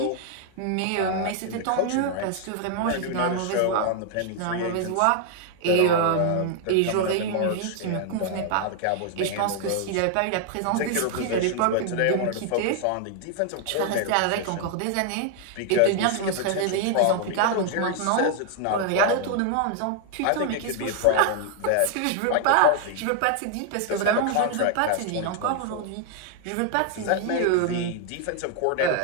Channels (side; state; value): both; different; correlation 0.00